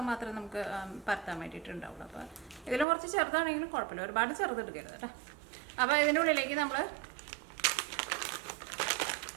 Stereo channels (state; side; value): drops out; left; at 2.9 s